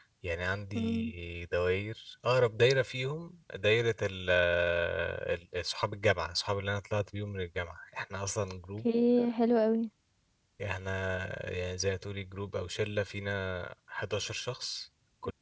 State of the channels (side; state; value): both; identical; correlation 1.00